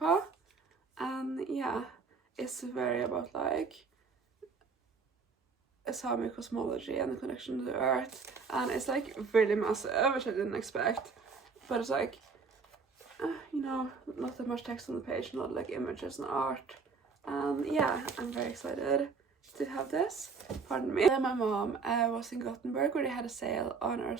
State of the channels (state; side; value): quieter; left; 5.0 dB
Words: And yeah, it's very about like a Sami cosmology and the connection to the earth, and it's like really massive, which I didn't expect, but it's like you know, not that much text on the page, not like images and art. Yeah, I'm very excited to have this. Pardon me. Then my mom was in Gothenburg where they had a sale on